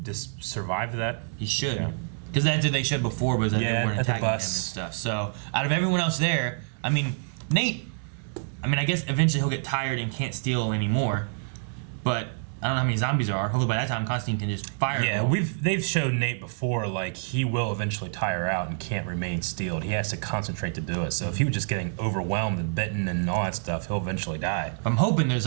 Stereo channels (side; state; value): left; silent; digital silence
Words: just survive that. He should, because that's what they should before, was that they weren't attacking him and stuff. So out of everyone else there, I mean, Nate. I mean, I guess eventually he'll get tired and can't steal anymore, but I don't know how many zombies there are. Hopefully by that time Constantine can just fire. Yeah, they've shown Nate before, like, he will eventually tire out and can't remain steeled. He has to concentrate to do it. So if he was just getting overwhelmed and bitten and all that stuff, he'll eventually die. I'm hoping there's